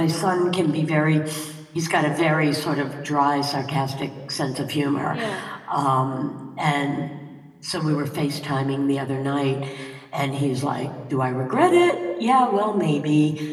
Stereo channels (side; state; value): both; identical; correlation 1.00